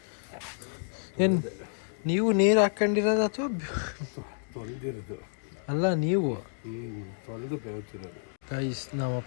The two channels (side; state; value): right; silent; digital silence